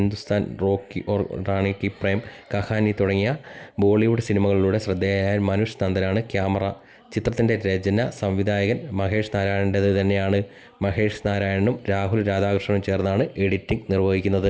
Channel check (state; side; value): identical; both; correlation 1.00